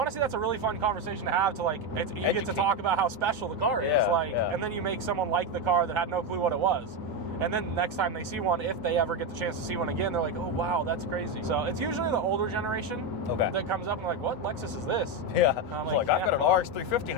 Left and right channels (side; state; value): both; normal; correlation 0.10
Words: that's a really fun conversation to have. To like, you get to talk about how special the car is, and then you make someone like the car that had no clue what it was. And then next time they see one, if they ever get the chance to see one again, they're like, oh, wow, that's crazy. So it's usually the older generation that comes up and like, what Lexus is this? Yeah. I'm like, I've got an RX 350